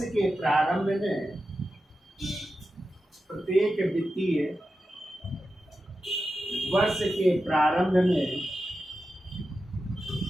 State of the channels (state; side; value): normal; both; correlation 0.91